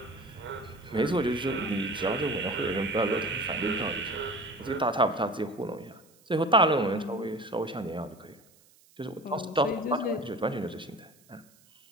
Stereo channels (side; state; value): right; noise; hiss, 29 dB below the sound